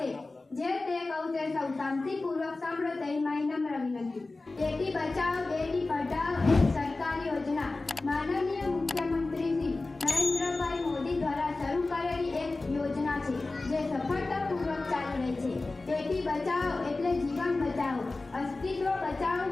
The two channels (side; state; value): right; quieter; 3.3 dB